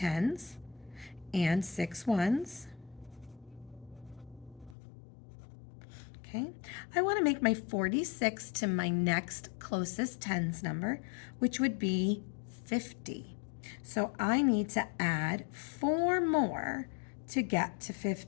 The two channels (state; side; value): drops out; right; at 4.8 s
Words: and 6 1s. Okay. I want to make my 46 to my next closest tens number, which would be 50. So I need to add 4 more to get to